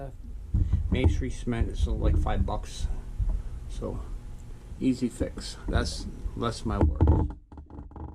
masonry cement is like $5. So easy fix. That's less my work.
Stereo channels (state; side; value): identical; both; correlation 1.00